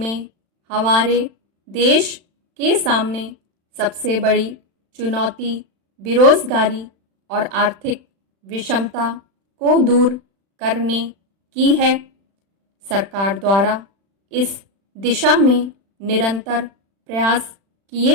हमारे देश के सामने सबसे बड़ी चुनौती बेरोजगारी और आर्थिक विषमता को दूर करने की है। सरकार द्वारा इस दिशा में निरंतर प्रयास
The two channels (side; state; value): left; late; 36 ms